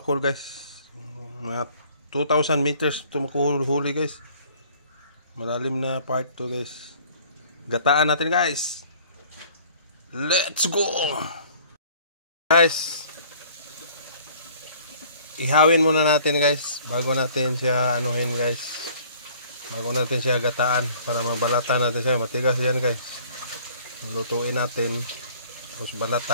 guys. Mga 2,000 meters tumukuhuli guys. Malalim na part to guys. Gataan natin guys. Let's go! Guys, ihawin muna natin guys bago natin siya anuhin guys. Bago natin siya gataan para mabalatan natin siya. Matigas yan guys. Lutuin natin. Tapos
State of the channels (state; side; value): inverted; both; correlation -0.54